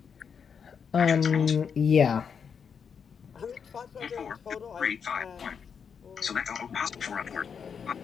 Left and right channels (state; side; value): quieter; right; 6.7 dB